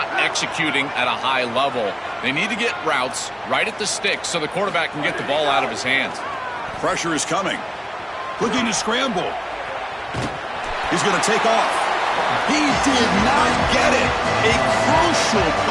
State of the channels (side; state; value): both; identical; correlation 1.00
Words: executing at a high level. They need to get routes right at the stick so the quarterback can get the ball out of his hands. Pressure is coming. Looking to scramble. He's going to take off. He did not get it. A crucial